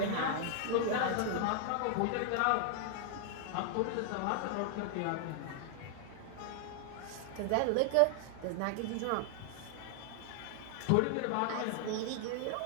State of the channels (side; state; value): both; different; correlation 0.00